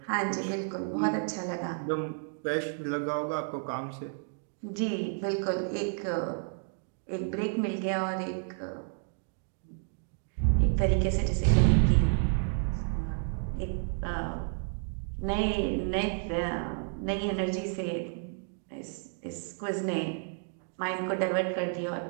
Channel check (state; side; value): silent; left; 57 dB below the other